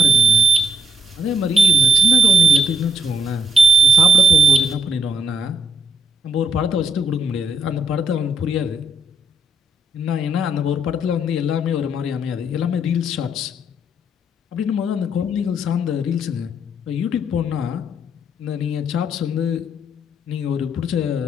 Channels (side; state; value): both; normal; correlation 0.73